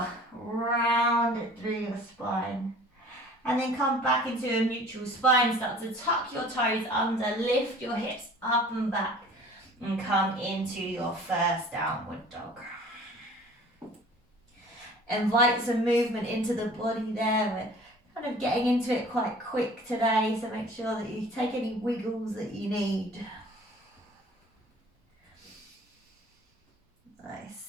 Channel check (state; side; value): normal; both; correlation 0.47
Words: round it through your spine. And then come back into a neutral spine. Start to tuck your toes under, lift your hips up and back. And come into your first downward dog. Invite some movement into the body there. We're kind of getting into it quite quick today, so make sure that you take any wiggles that you need.